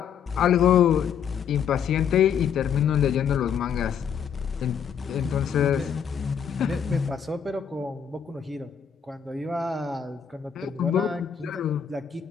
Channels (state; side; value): quieter; right; 7.7 dB